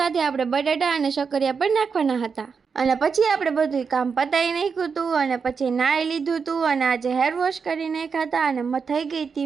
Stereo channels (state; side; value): quieter; left; 5.7 dB